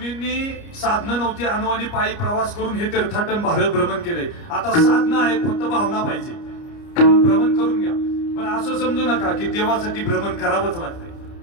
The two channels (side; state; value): right; late; 29 ms